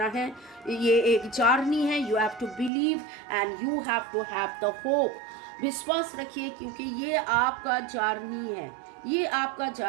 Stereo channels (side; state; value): left; drops out; at 2.7 s